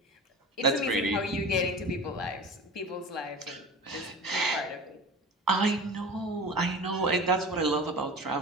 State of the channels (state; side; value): normal; both; correlation 0.35